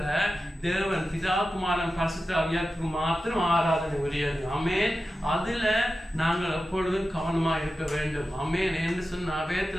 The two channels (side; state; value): both; normal; correlation 0.93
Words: தேவன் பிதா குமாரன் பரிசுத்த ஆவியாருக்கு மாத்திரம் ஆராதனை உரியது. ஆமென். அதுல நாங்கள் எப்பொழுதும் கவனமா இருக்க வேண்டும். ஆமென் என்று சொன்ன